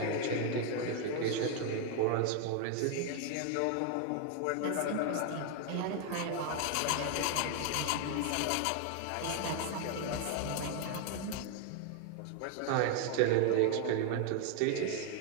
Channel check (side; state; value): both; different; correlation 0.00